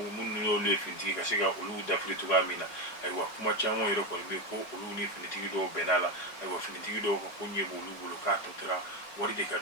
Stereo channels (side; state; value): right; late; 4.8 ms